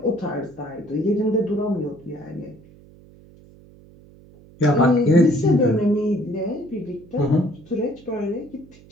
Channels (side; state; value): right; noise; hum, 24 dB below the sound